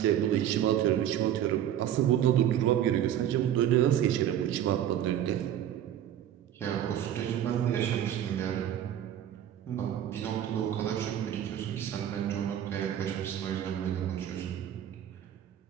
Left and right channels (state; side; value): quieter; left; 10.8 dB